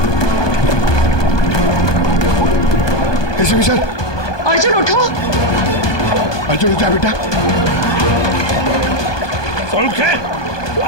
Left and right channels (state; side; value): late; right; 1.2 ms